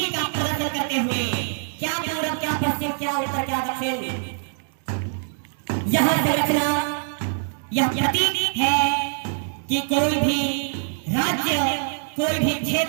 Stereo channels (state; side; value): silent; left; digital silence